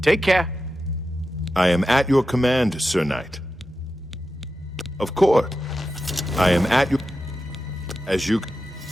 Take care. I am at your command, Sir Knight. Of course. I am at your... As you...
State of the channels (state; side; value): normal; both; correlation 0.91